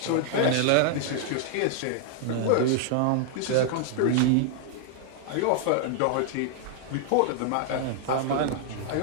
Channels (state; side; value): different; both; correlation 0.00